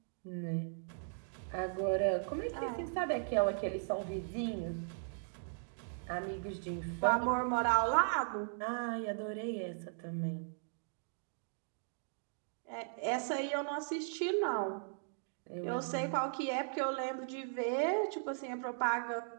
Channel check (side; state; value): left; silent; digital silence